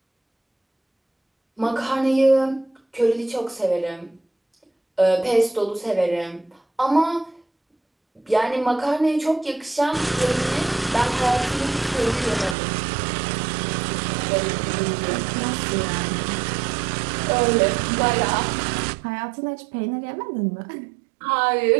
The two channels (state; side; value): drops out; left; at 12.6 s